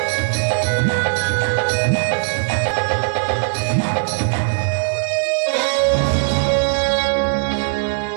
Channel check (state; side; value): silent; left; digital silence